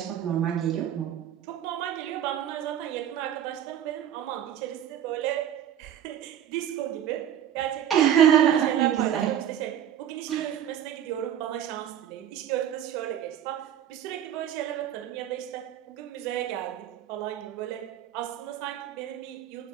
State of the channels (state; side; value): quieter; left; 10.3 dB